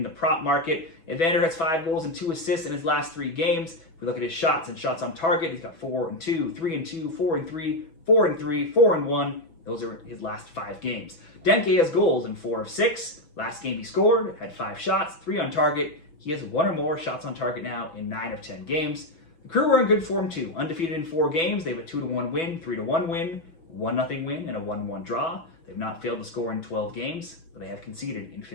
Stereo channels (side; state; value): right; late; 6.1 ms